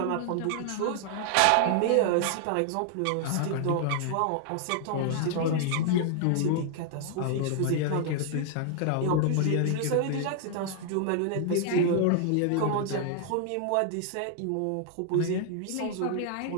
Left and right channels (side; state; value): both; different; correlation 0.00